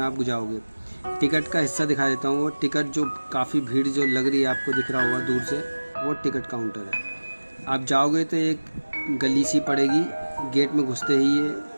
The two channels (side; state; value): both; inverted; correlation -1.00